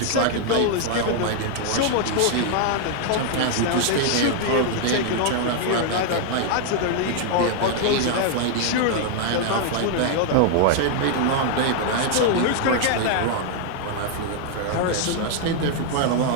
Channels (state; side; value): different; both; correlation 0.00